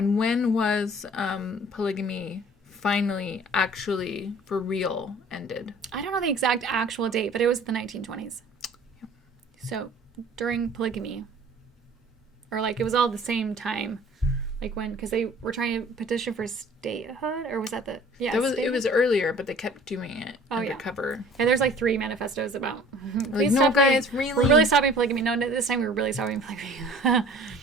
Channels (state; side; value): normal; both; correlation 0.49